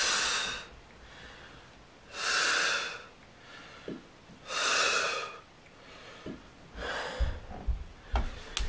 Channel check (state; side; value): identical; both; correlation 1.00